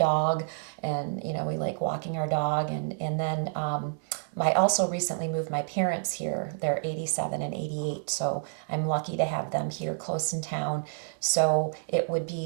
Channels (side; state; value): left; silent; 59 dB below the other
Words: and we like walking our dog, and then I also recently moved my parents here. They're 87 and 88, so I'm lucky to have them here close in town. So it would be